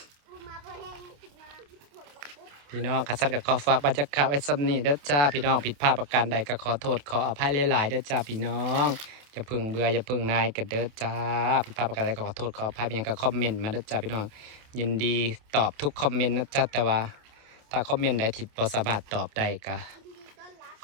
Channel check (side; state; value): left; late; 28 ms